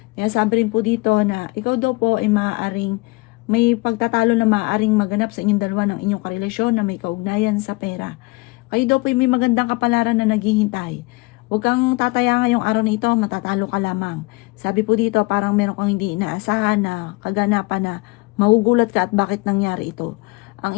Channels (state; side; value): quieter; right; 25.0 dB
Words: Sinasabi rin po dito na ikaw daw po ay maaaring may pagtatalo na maaaring maganap sa inyong dalawa ng inyong karelasyon na may kaugnayan sa pera. Kayo daw po ay may magandang kapalaran na naghihintay. Huwag kang tataya ngayong araw na ito, matatalo ka lamang. Sabi po dito, parang meron kang hindi inaasahan na kaganapan na magugulat ka at bakit nangyari ito. Ang